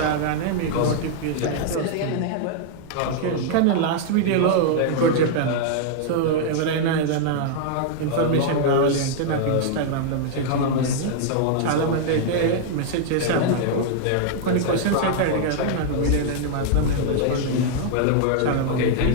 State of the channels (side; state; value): both; different; correlation -0.01